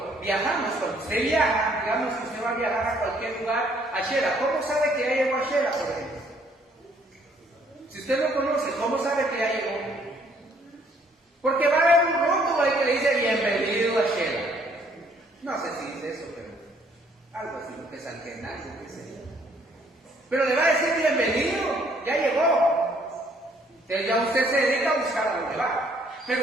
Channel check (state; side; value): normal; both; correlation 0.64